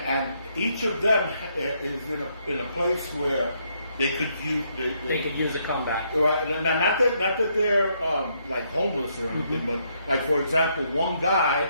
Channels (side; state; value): both; inverted; correlation -0.74